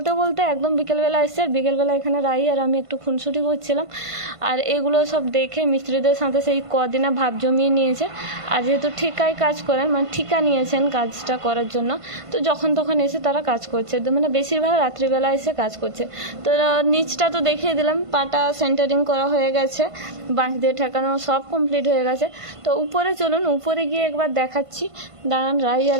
বলতে একদম বিকেলবেলা এসছে। আর বিকেলবেলা এখানে রাই আর আমি একটু খুনসুটি করছিলাম। আর এগুলো সব দেখে মিস্ত্রিদের সাথে সেই কদিনা ভাব জমিয়ে নিয়েছে। আর যেহেতু ঠিকায় কাজ করেন, ঠিকা নিয়েছেন কাজটা করার জন্য, তো যখন তখন এসে তারা কাজ করছে। তো বেশিরভাগ রাত্রিবেলা এসে কাজ করছে। তো নিচটা তো দেখিয়ে দিলাম, পাটা সেন্টারিং করা হয়ে গেছে, বাঁশ দিয়ে ঠেকানো সব কমপ্লিট হয়ে গেছে। তো উপরে চলুন, উপরে গিয়ে একবার দেখাচ্ছি। দাঁড়ান, রাই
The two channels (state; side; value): late; left; 1.5 ms